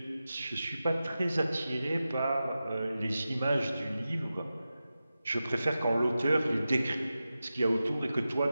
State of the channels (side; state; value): both; inverted; correlation -0.93